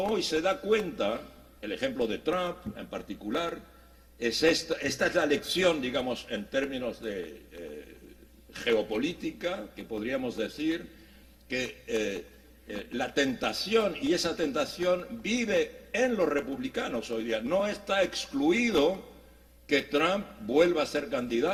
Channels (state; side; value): identical; both; correlation 1.00